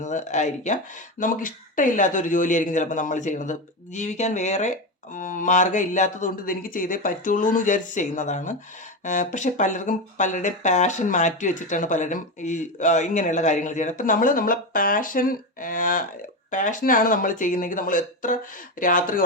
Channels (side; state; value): both; normal; correlation 0.15